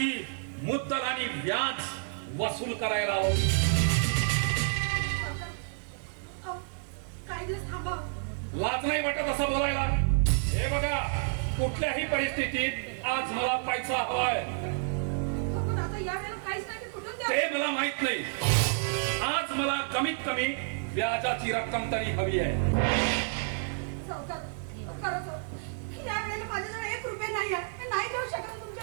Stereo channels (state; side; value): silent; left; 58 dB below the other